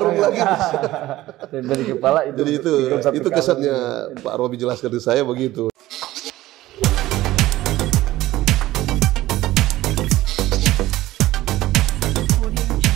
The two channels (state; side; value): quieter; left; 16.2 dB